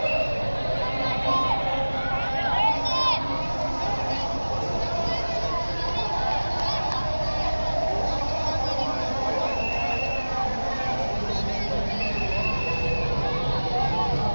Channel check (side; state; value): both; inverted; correlation -1.00